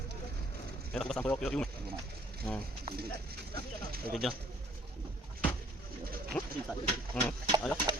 Enak pas sampai yuk. Kerja. Ayo.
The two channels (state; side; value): normal; both; correlation 0.60